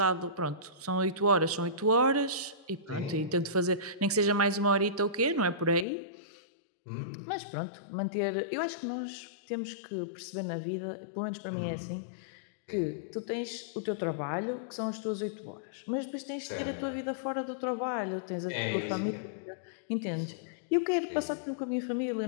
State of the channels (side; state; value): right; drops out; at 5.9 s